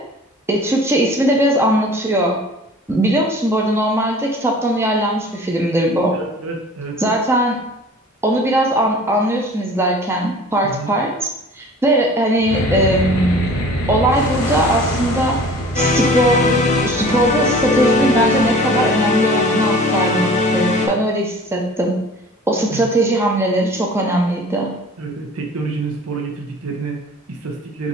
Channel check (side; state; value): both; normal; correlation 0.45